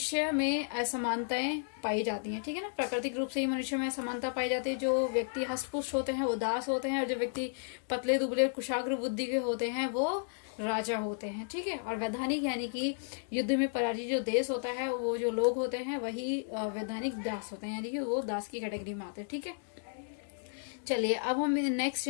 में असमानताएं पाई जाती हैं। ठीक है ना, प्राकृतिक रूप से ही मनुष्य में असमानता पाई जाती है। जो व्यक्ति हष्टपुष्ट होते हैं वो दास होते हैं, और जो व्यक्ति पतले दुबले कुशाग्र बुद्धि के होते हैं वो राजा होते हैं। ठीक है, और वैधानिक यानी कि युद्ध में पराजित जो देश होता है, वो जो लोग होते हैं वही वैधानिक दास होते हैं, यानी कि वो दास की कैटेगरी में आते हैं। ठीक है, चलिए अब हम नेक्स्ट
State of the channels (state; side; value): silent; right; digital silence